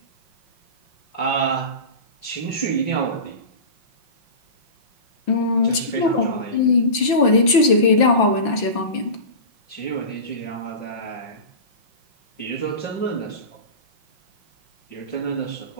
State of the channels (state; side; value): late; right; 5.9 ms